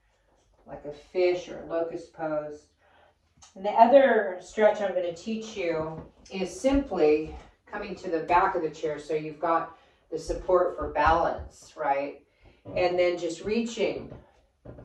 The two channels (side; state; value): both; identical; correlation 1.00